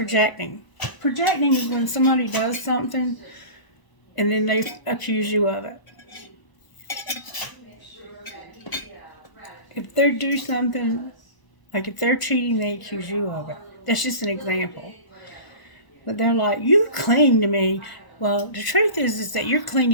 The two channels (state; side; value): late; right; 1.0 ms